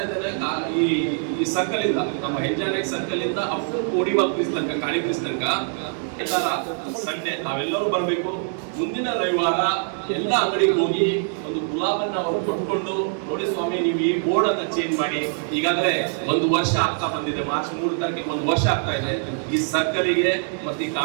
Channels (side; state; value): left; silent; 60 dB below the other